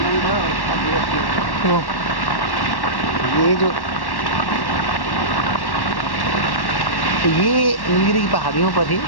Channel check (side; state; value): right; late; 1.1 ms